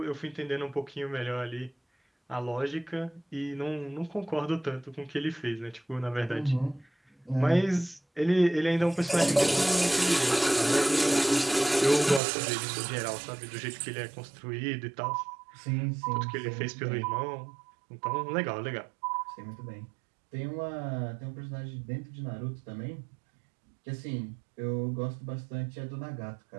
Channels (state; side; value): drops out; left; at 12.2 s